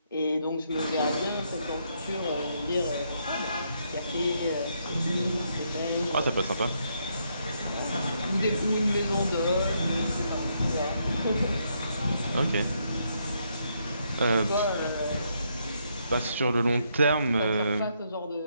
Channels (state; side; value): inverted; both; correlation -0.76